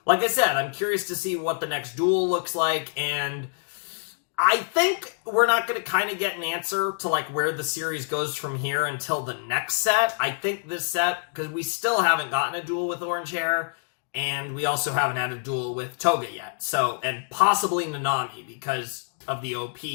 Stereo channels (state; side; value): silent; right; digital silence